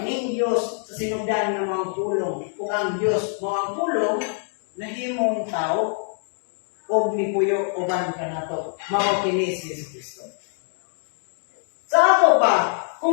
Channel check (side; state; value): right; silent; 62 dB below the other